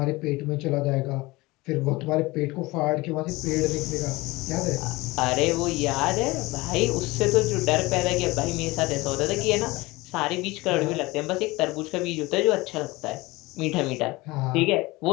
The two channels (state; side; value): quieter; right; 21.6 dB